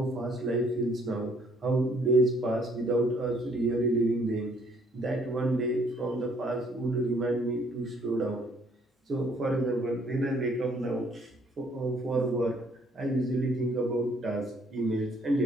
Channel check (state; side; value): normal; both; correlation 0.63